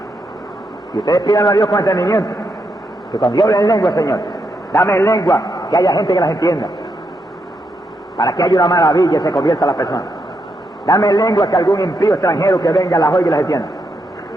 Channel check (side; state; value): both; normal; correlation 0.81